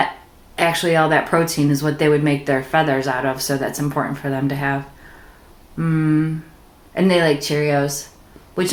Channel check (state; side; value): identical; both; correlation 1.00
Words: actually, all that protein is what they would make their feathers out of, so that's important for them to have. And they like Cheerios, which